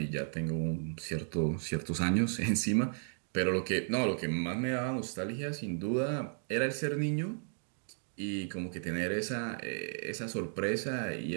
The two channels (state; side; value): silent; left; digital silence